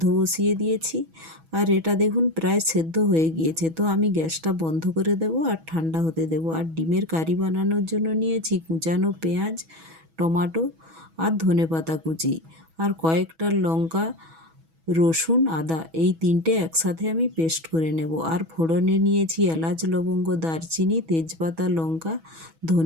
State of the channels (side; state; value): left; late; 6.1 ms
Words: বসিয়ে দিয়েছি। আর এটা দেখুন প্রায় সেদ্ধ হয়ে গিয়েছে। তো আমি গ্যাসটা বন্ধ করে দেব আর ঠান্ডা হতে দেব। আর ডিমের কারি বানানোর জন্য নিয়েছি কুচানো পেঁয়াজ, টমেটো আর ধনেপাতা কুচি, আর কয়েকটা লঙ্কা, রসুন, আদা, এই তিনটে একসাথে আমি পেস্ট করে নেব। আর ফোড়নে নিয়েছি এলাচ, লবঙ্গ, দারচিনি, তেজপাতা, লঙ্কা,